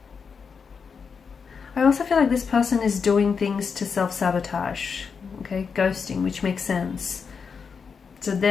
I also feel like this person is doing things to self-sabotage, okay, ghosting, which makes sense. So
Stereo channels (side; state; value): right; quieter; 5.8 dB